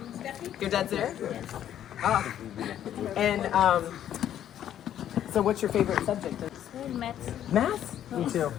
my dad Your dad's there. Ah. And so what's your favorite subject? is maths. Math? Me too.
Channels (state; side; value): quieter; right; 10.8 dB